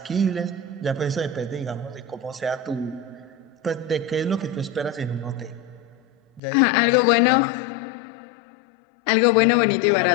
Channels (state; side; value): drops out; right; at 6.4 s